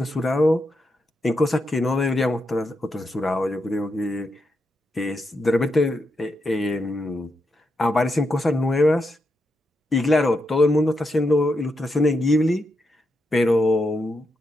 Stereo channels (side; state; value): both; normal; correlation 0.84